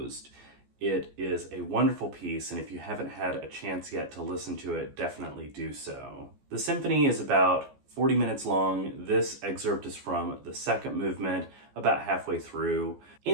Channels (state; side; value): late; left; 14 ms